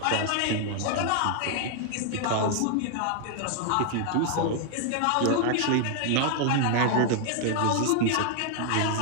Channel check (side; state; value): both; different; correlation 0.00